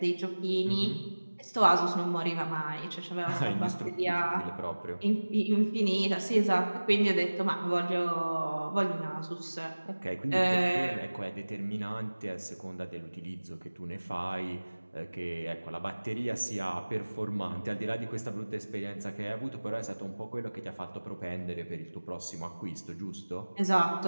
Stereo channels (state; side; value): inverted; both; correlation -1.00